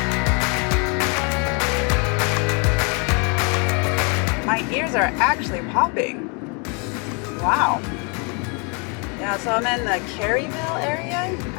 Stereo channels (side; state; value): right; quieter; 34.5 dB